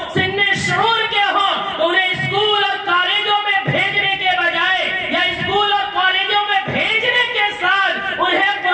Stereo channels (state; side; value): identical; both; correlation 1.00